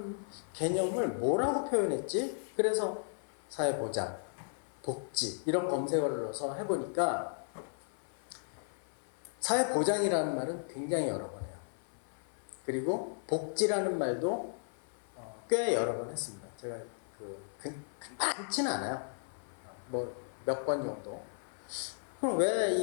개념을 뭐라고 표현했지? 그래서 사회보장, 복지 이런 검색어를 넣어서 해보니까 사회보장이라는 말은 굉장히 여러 번 해요. 그리고 복지라는 말도 꽤 여러 번 했습니다. 제가 많지는 않아요. 뭐 몇 번 정도. 그럼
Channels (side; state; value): right; silent; 54 dB below the other